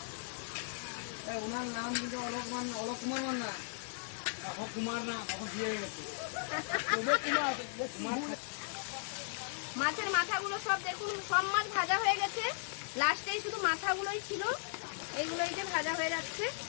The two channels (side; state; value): right; silent; digital silence